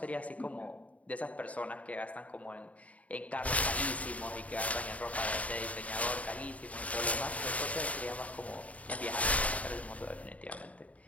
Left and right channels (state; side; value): late; right; 0.068 ms